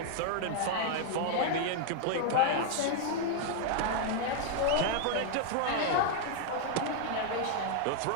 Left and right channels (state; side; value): different; both; correlation 0.00